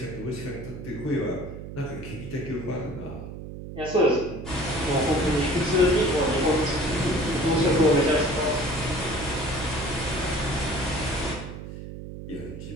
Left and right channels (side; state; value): right; noise; hum, 10 dB below the sound